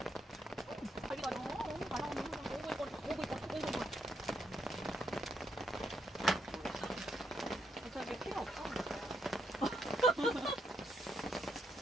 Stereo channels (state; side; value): normal; both; correlation 0.77